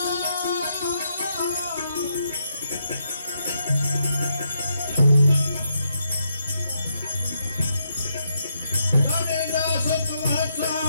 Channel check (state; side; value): inverted; both; correlation -0.79